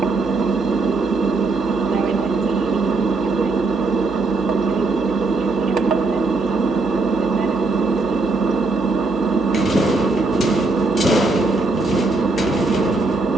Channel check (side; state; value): left; quieter; 3.4 dB